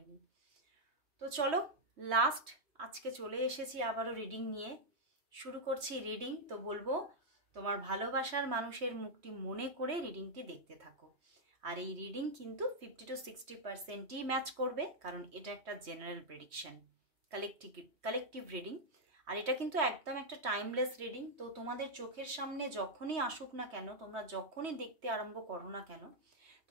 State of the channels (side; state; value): left; late; 3.2 ms